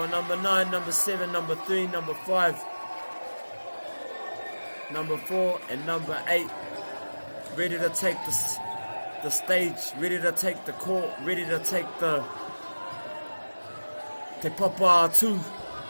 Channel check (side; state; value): both; inverted; correlation -1.00